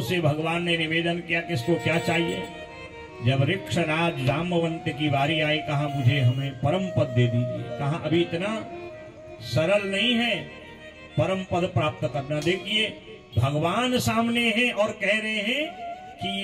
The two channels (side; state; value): both; identical; correlation 1.00